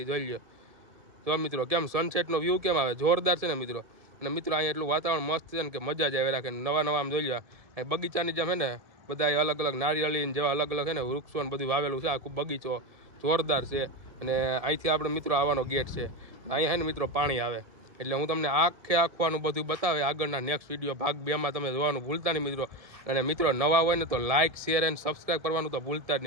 જોઈ લો જો મિત્રો કેમ સનસેટનો વ્યૂ કેમ આવે, જોરદાર છે ને મિત્રો. અને મિત્રો અહીંયા એટલું વાતાવરણ મસ્ત છે ને કે મજા જ આવે રાખે. નવા આમ જોઈ લો અહીં બગીચાની જેમ છે ને બધા અલગ અલગ નારિયેળી જેવા અલગ અલગ છે ને વૃક્ષો ને બધું વાવેલું છે. આખું બગીચો જોરદાર છે. અને અહીંથી આપણે મિત્રો આવવાનો ગેટ છે. અહીંયા છે ને મિત્રો પાણી આવે. એટલે હું તમને આખું બધું બતાવે આગળના નેક્સ્ટ વિડીયો ભાગ 2માં તમે જોવાનું ભૂલતા નહીં મિત્રો. અને મિત્રો નવા હોય ને તો લાઇક, શેર એન્ડ સબસ્ક્રાઈબ કરવાનું તો ભૂલતા જ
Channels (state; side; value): late; left; 1.7 ms